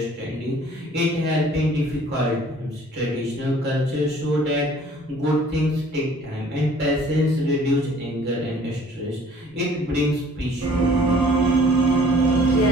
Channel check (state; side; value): normal; both; correlation 0.54